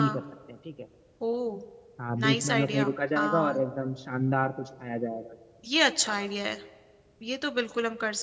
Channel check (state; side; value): identical; both; correlation 1.00